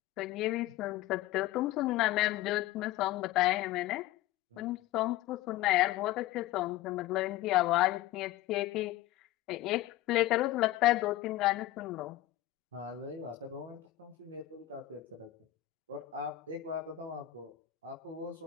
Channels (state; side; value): quieter; right; 15.4 dB